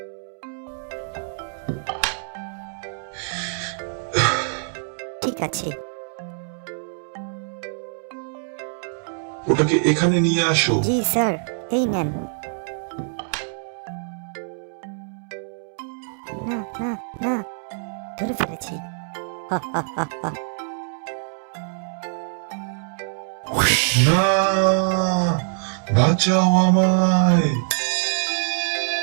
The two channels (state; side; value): silent; left; 63 dB below the other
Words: ঠিক আছে, ওটাকে এখানে নিয়ে আসো। জি স্যার, এই নেন। না না না, ধরে ফেলেছি। হা, হা, হা, হা। না, বাঁচাও আমায়,